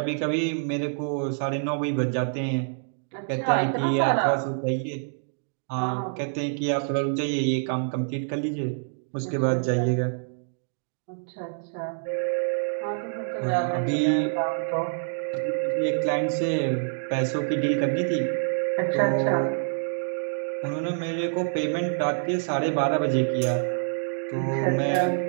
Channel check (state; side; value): silent; left; digital silence